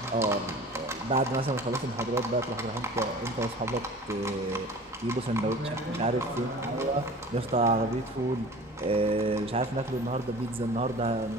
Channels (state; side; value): normal; both; correlation 0.42